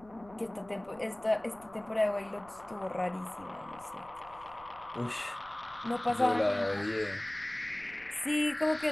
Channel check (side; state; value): left; noise; rumble, 24 dB below the sound